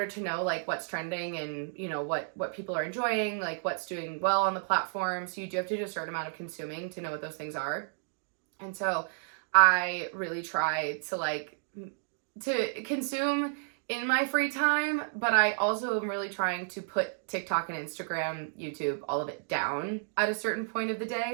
to know like what's trending and, you know, what people are enjoying, like what's doing well on the platform. So you do have to do a certain amount of consuming to know what those things are. And so I really try to consume in my free time, but I also am really trying to put TikTok and Instagram, YouTube, all of it down at a certain point of the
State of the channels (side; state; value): left; silent; digital silence